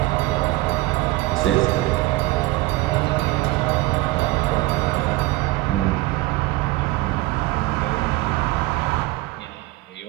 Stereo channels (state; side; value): quieter; left; 18.9 dB